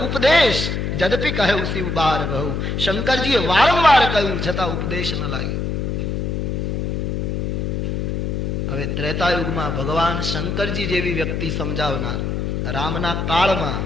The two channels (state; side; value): noise; left; hum, 1 dB below the sound